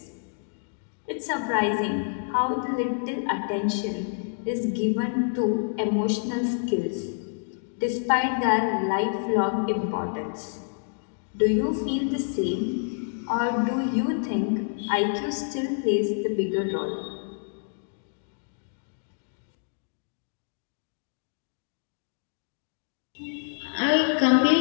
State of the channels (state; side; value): silent; right; digital silence